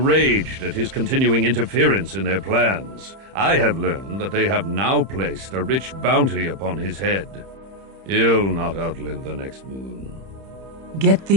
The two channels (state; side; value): late; left; 31 ms